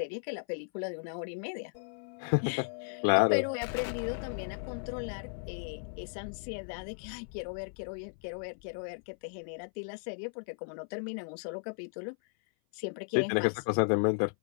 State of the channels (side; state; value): right; silent; 55 dB below the other